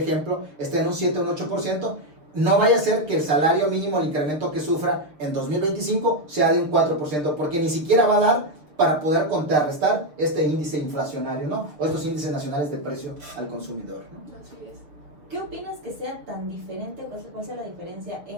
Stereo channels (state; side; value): late; left; 6.5 ms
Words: ejemplo, esté en un 7 o un 8%, no vaya a ser que el salario mínimo, el incremento que sufra en 2025 sea de un 4%, porque ni siquiera va a dar para poder contrarrestar este índice inflacionario, ¿no? O estos índices nacionales de precio al consumidor, ¿no? Así es. ¿Qué opinas que sea tan diferente, cuál sea la diferencia